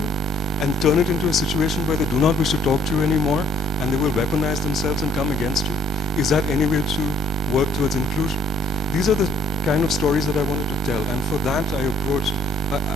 and turn it into a situation where they do not wish to talk to you anymore, and they will weaponize themselves and come against you. Is that any way to work towards inclusion? These are the kind of stories that I wanted to tell, and for that I approached,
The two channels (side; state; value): both; normal; correlation 0.62